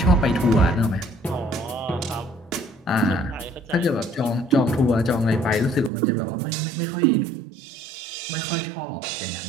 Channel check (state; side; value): drops out; left; at 5.9 s